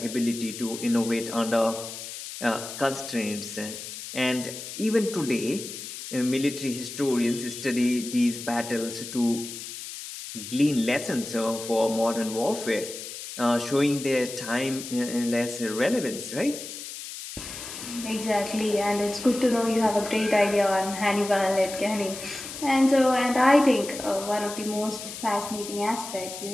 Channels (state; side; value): noise; left; hiss, 10 dB below the sound